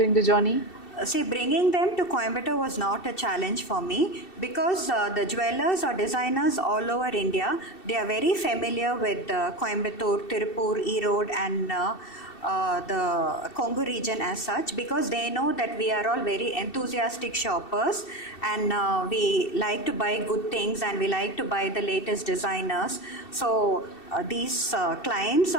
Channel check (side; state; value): right; late; 2.7 ms